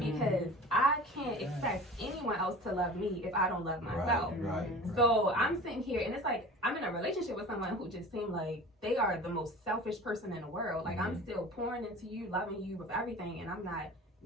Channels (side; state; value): both; normal; correlation 0.39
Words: Because I can't expect anyone else to love me if I don't love myself. Right. So I'm sitting here and it's like I'm in a relationship with someone who just seemed like they are the most selfish person in the world. Like I'm still pouring into you, loving you with everything, and I'm not